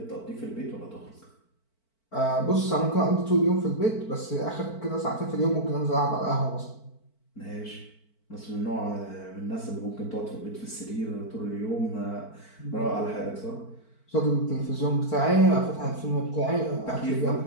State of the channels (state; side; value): late; right; 4.5 ms